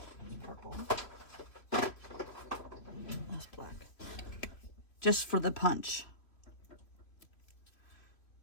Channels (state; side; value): late; right; 2.9 ms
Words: purple. That's black. Just for the punch.